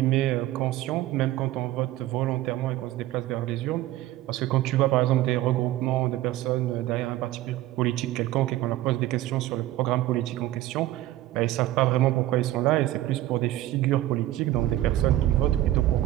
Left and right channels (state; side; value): quieter; left; 15.0 dB